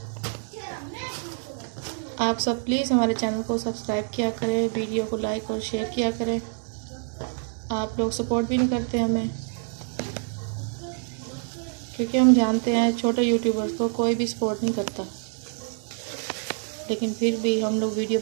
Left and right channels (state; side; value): silent; left; 58 dB below the other